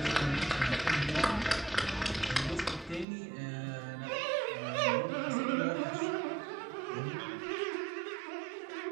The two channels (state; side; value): drops out; left; at 3.1 s